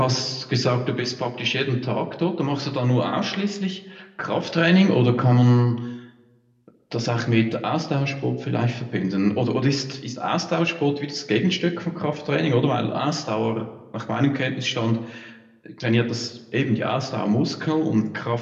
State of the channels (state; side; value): identical; both; correlation 1.00